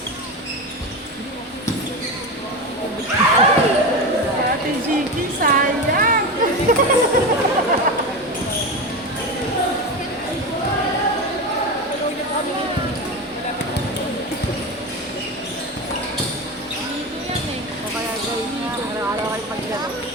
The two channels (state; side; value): normal; both; correlation 0.22